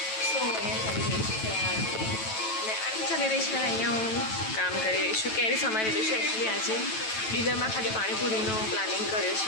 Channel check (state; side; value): late; right; 9.1 ms